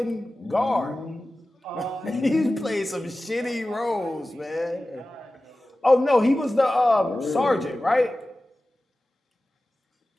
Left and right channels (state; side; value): normal; both; correlation 0.96